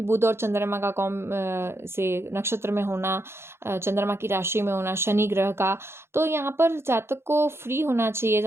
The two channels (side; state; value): left; late; 0.12 ms